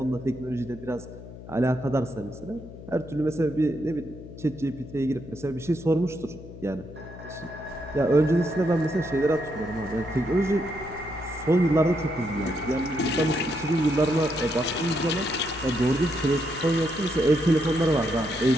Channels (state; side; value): noise; left; hum, 15 dB below the sound